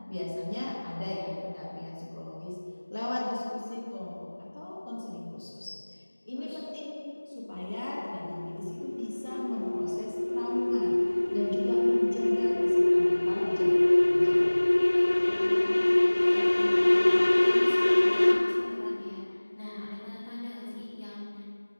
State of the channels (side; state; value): both; inverted; correlation -1.00